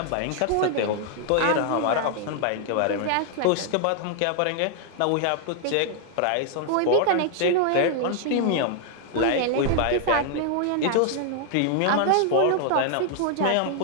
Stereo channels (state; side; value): different; both; correlation 0.00